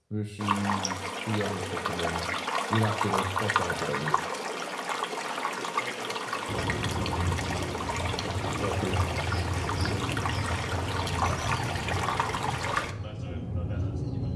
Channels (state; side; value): identical; both; correlation 1.00